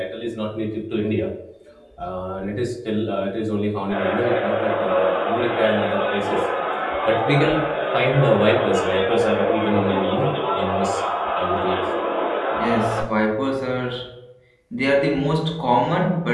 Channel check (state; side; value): identical; both; correlation 1.00